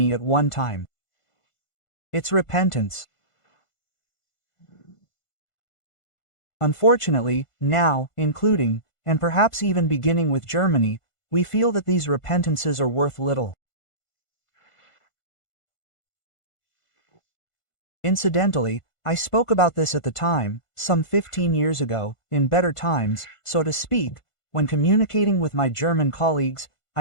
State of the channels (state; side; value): late; right; 1.5 ms